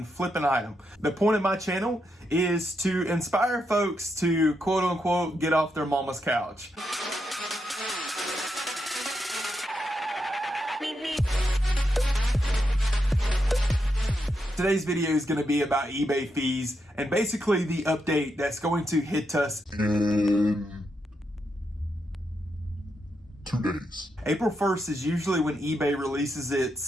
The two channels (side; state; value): both; normal; correlation 0.83